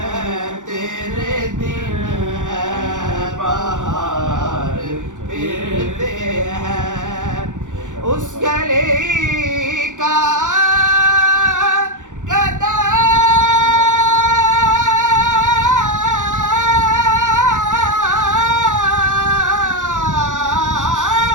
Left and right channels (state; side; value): late; left; 0.86 ms